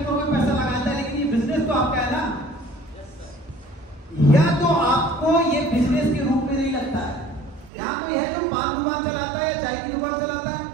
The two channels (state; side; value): drops out; left; at 7.7 s